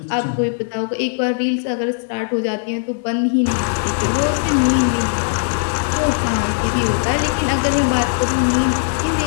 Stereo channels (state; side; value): silent; right; 67 dB below the other